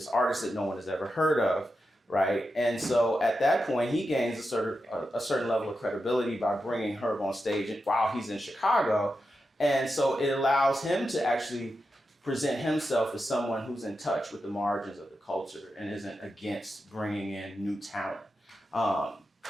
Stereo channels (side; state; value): both; normal; correlation 0.89